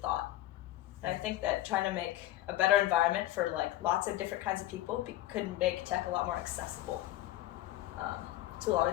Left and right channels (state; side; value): quieter; right; 15.0 dB